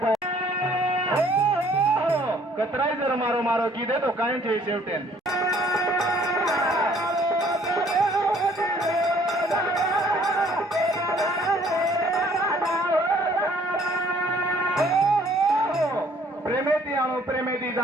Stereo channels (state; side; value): normal; both; correlation 0.60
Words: पाय कतराय जर मारो मारो कीधे तो काय છે शेवटेन प्रेमेती आणो प्रेमेती